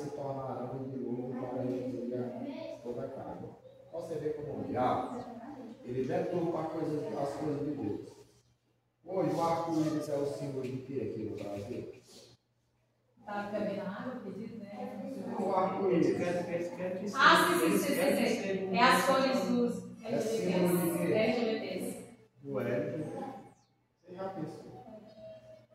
tornarão de dilúvio para destruir toda a carne. Você vê como o diabo, ele deturpa as coisas de Deus. Hoje o arco-íris é o símbolo de que aqui no Brasil? Tá bebendo água, acredito, né? O arco-íris. Sim. É as cores dos LGBTs. O L. Você já pensou?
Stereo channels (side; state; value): both; identical; correlation 1.00